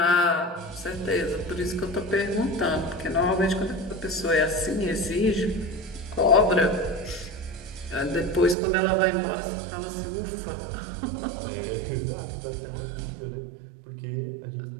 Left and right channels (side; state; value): left; drops out; at 8.6 s